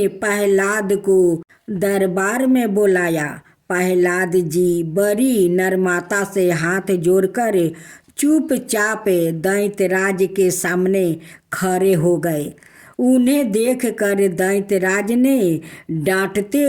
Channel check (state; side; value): identical; both; correlation 1.00